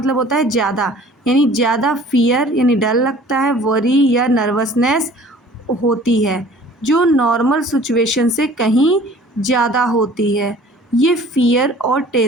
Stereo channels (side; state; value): both; normal; correlation 0.49